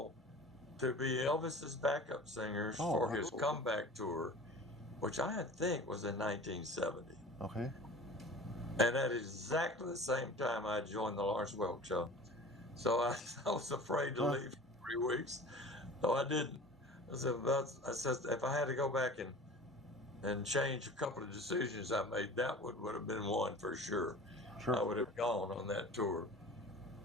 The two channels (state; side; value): normal; both; correlation 0.40